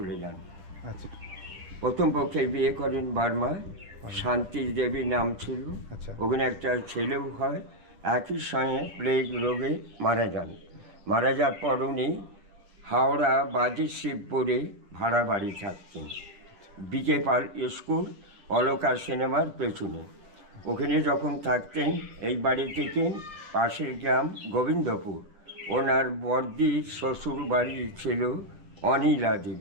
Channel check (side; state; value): left; late; 9.9 ms